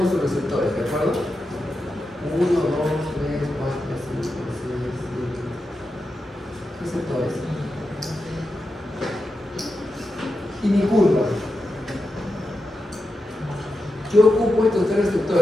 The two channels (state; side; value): normal; both; correlation 0.89